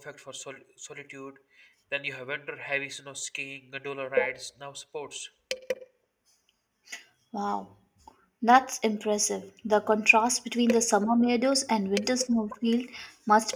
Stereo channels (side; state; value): both; identical; correlation 1.00